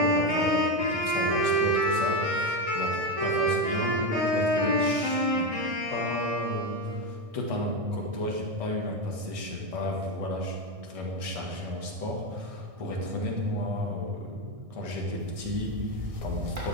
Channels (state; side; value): late; left; 1.6 ms